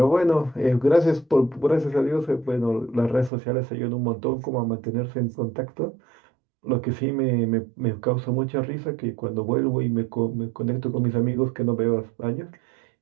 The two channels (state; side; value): drops out; left; at 3.3 s